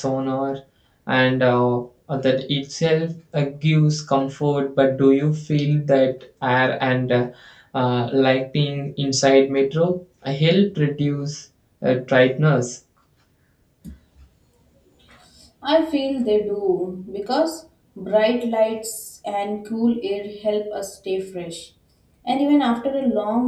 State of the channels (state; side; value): identical; both; correlation 1.00